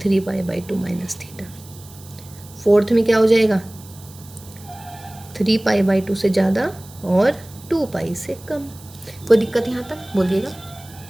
माइनस थीटा। फोर्थ में क्या हो जाएगा, 3π/2 से ज़्यादा और 2π से कम। कोई दिक्कत यहाँ तक बोलिएगा।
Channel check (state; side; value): noise; right; hiss, 21 dB below the sound